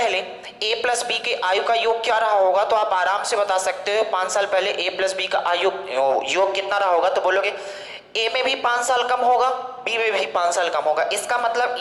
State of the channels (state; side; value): identical; both; correlation 1.00